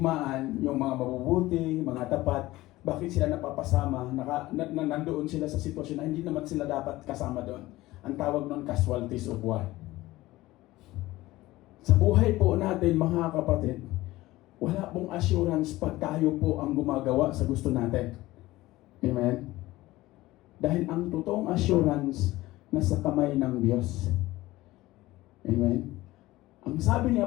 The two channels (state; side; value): quieter; right; 17.9 dB